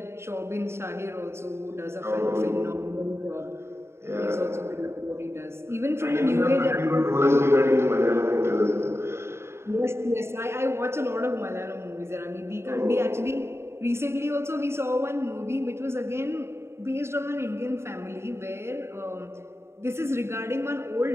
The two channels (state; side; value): late; left; 0.12 ms